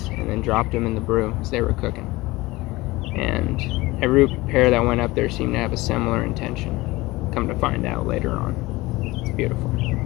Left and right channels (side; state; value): right; quieter; 20.5 dB